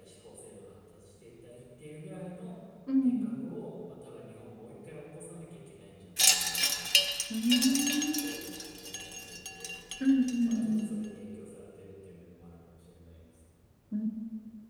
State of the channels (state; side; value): identical; both; correlation 1.00